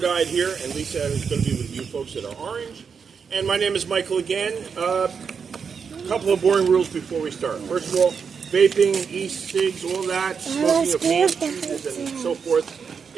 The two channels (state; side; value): quieter; left; 6.2 dB